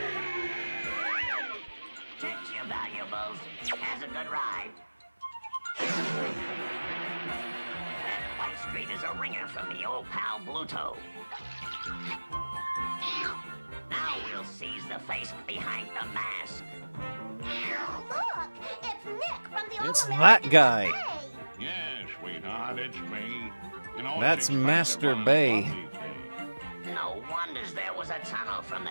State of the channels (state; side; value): inverted; both; correlation -1.00